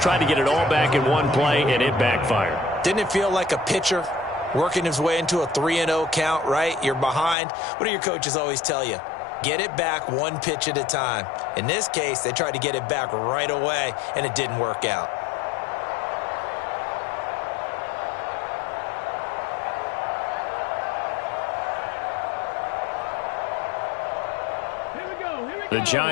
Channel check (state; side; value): drops out; right; at 7.4 s